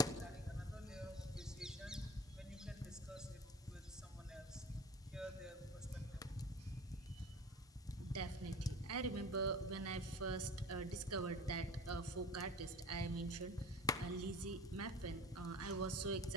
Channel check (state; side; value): normal; both; correlation 0.38